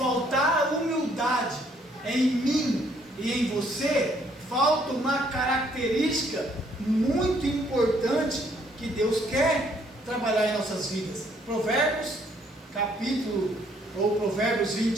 a humildade em mim e em você, falta uma característica muito importante que Deus quer trabalhar em nossas vidas. Provérbios, Provérbios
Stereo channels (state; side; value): normal; both; correlation 0.66